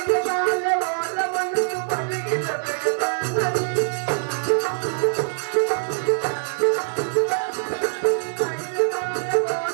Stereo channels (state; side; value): silent; left; digital silence